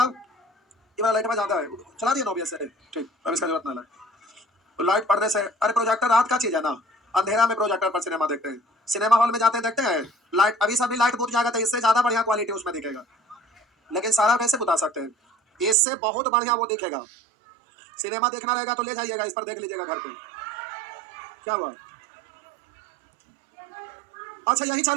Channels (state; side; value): drops out; left; at 15.8 s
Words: ये वाला लाइट में जाता है चला दिया नोबिया से, ठीक अब इसका जरूरत ना है। तो लाइट पड़ने से, अरे प्रोजेक्टर रात का चीज है ना, अंधेरा में प्रोजेक्टर पर सिनेमा देखते हैं, सिनेमा हॉल में जाते हैं देखते हैं लाइट, अभी सभी लाइट बुझ जाएगा तो इससे ज्यादा बढ़िया क्वालिटी उसमें दिखेगा, लेकिन सारा कैसे बता सकते हैं, इससे बहुत बढ़िया वो दिखेगा। सिनेमा देखना रहेगा तो ले जाइएगा, इस पर देख लीजिएगा घर पे। क्या हुआ, अच्छा यही